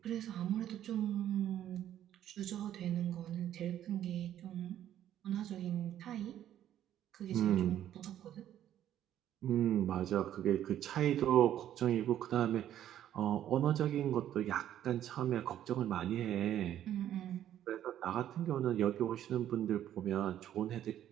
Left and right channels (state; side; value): quieter; left; 11.4 dB